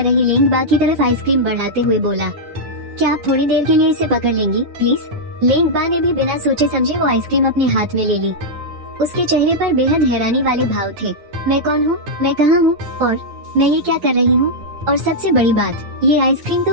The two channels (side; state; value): left; late; 9.8 ms